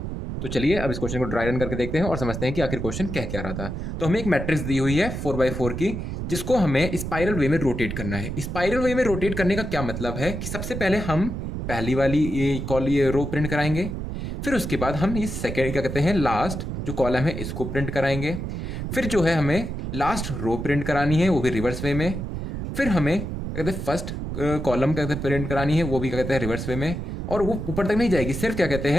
तो चलिए अब इस क्वेश्चन को ड्राई रन करके देखते हैं और समझते हैं कि आखिर क्वेश्चन कह क्या रहा था। तो हमें एक मैट्रिक्स दी हुई है 4x4 की, जिसको हमें स्पाइरल वे में रोटेट करना है। स्पाइरल वे में रोटेट करने का क्या मतलब है कि सबसे पहले हम पहली वाली ये रो प्रिंट कराएंगे, फिर उसके बाद हम ये सेकेंड क्या कहते हैं लास्ट जो कॉलम है इसको प्रिंट कराएंगे, फिर जो है हमें लास्ट रो प्रिंट करानी है वो भी रिवर्स वे में, फिर हमें क्या कहते हैं फर्स्ट कॉलम क्या कहते हैं प्रिंट करानी है वो भी क्या कहते हैं रिवर्स वे में, और वो ऊपर तक नहीं जाएगी, सिर्फ क्या कहते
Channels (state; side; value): noise; right; rumble, 5 dB below the sound